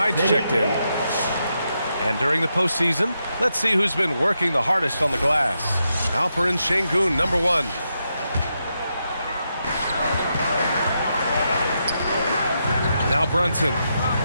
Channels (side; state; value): both; inverted; correlation -0.84